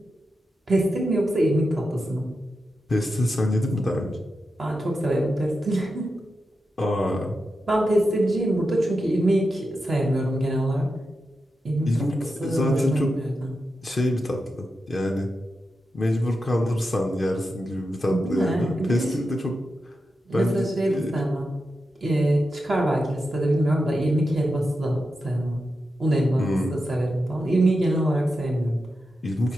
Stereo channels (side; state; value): both; normal; correlation 0.89